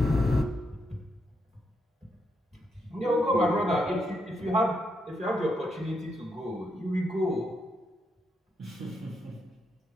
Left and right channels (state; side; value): normal; both; correlation 0.80